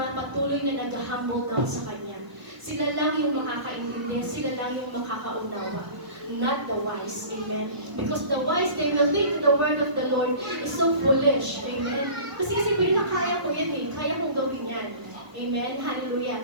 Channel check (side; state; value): left; late; 1.1 ms